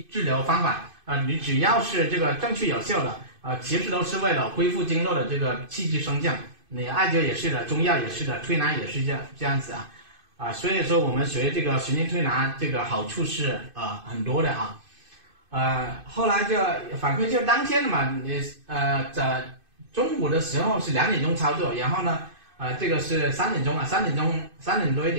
治疗方法你只要是这个正确有效的其实都是为了恢复经络的这个气机升降。你艾灸也是的，中药也是的，推拿也是这样子所以说我们学这个循经推拿这个好处是很多的后来就反馈就当天嘛，你在中午的时候是2点钟操作，然后呢这个是3点钟3点多一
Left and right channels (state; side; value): late; left; 2.5 ms